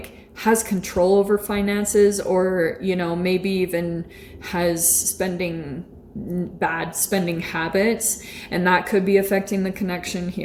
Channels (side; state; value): both; identical; correlation 1.00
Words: has control over finances, or, you know, maybe even has bad spending habits, and that could be affecting the connection